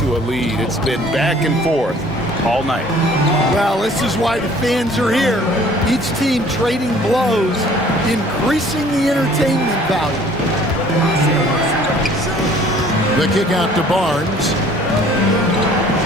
a lead. It's been back and forth all night. Well, this is why the fans are here. Each team trading blows, increasing the entertainment value. The kick out to Barnes.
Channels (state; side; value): normal; both; correlation 0.54